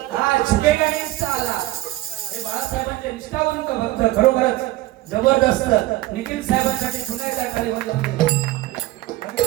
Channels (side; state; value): left; quieter; 17.1 dB